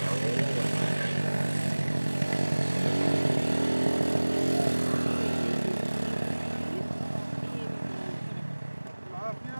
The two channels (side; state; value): both; inverted; correlation -1.00